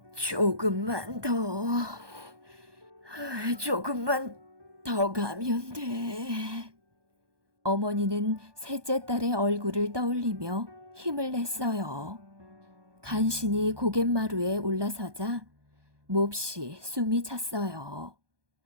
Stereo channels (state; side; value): late; left; 1.2 ms